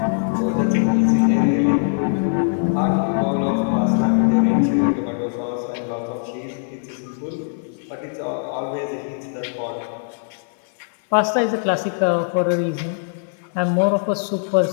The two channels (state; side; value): silent; right; 58 dB below the other